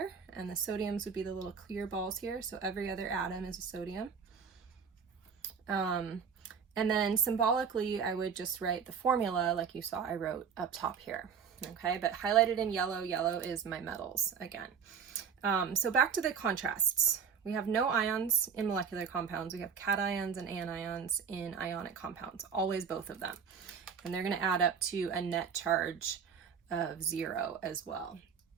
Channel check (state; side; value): quieter; left; 6.7 dB